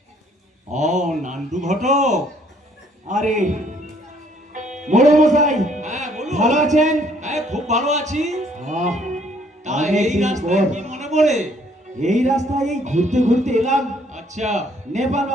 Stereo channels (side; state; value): both; normal; correlation 0.64